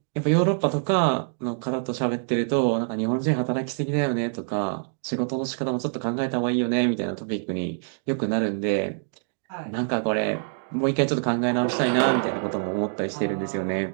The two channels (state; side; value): silent; left; 61 dB below the other